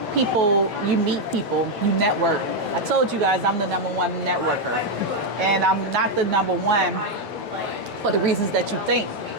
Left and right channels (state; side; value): late; left; 7.4 ms